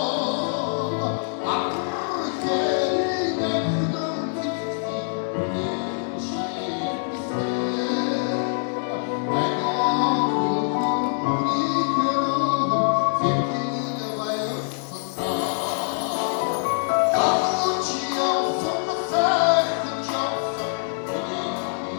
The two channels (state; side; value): silent; right; digital silence